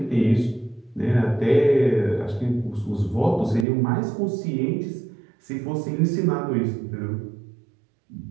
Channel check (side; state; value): left; drops out; at 3.7 s